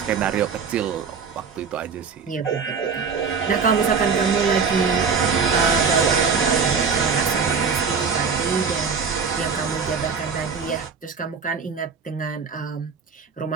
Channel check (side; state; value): left; quieter; 5.7 dB